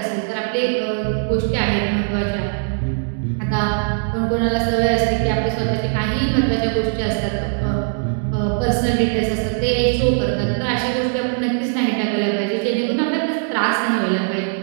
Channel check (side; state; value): left; silent; 64 dB below the other